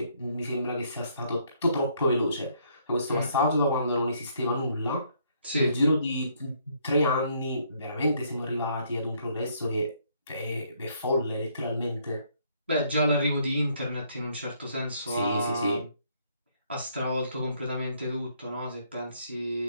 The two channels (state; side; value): inverted; both; correlation -0.69